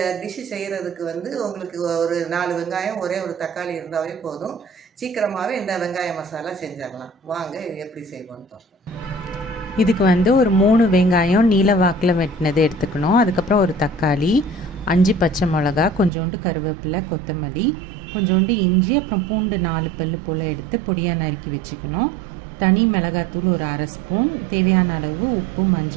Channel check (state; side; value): drops out; left; at 16.1 s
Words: டிஷ்ஷு செய்கிறதுக்கு உங்களுக்கு ஒரு 4 வெங்காயம் ஒரே ஒரு தக்காளி இருந்தாவே போதும். சீக்கிரமாகவே இந்த வெங்காய மசாலா செஞ்சிடலாம். வாங்க எப்படி செய்வோன்னு பார்ப்போம். இதுக்கு ஒரு 3 வெங்காயம் நீல வாக்கில் வெட்டினது எடுத்துக்கணும். அதுக்கப்புறம் ஒரு தக்காளி, 5 பச்சை மிளகா, கொஞ்சோண்டு கருவேப்பிலை, கொத்தமல்லி, கொஞ்சோண்டு இஞ்சி, அப்புறம் பூண்டு 4 பல்லு போல் எடுத்து பொடியாக நறுக்கி வச்சுக்கணும். தனி மிளகாத்தூள் ஒரு 1/2 ஸ்பூன், தேவையான அளவு உப்பு,